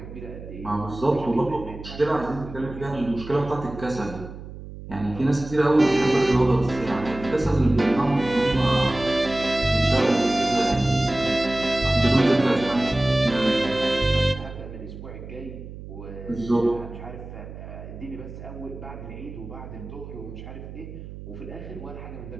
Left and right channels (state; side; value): noise; right; hum, 13 dB below the sound